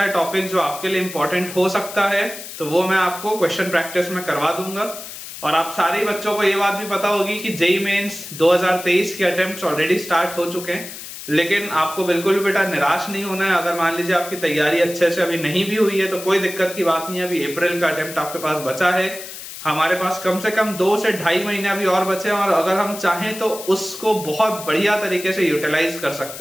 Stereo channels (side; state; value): left; noise; hiss, 12 dB below the sound